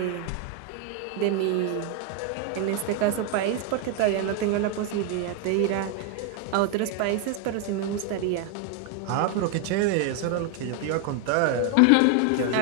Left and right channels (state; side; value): different; both; correlation 0.01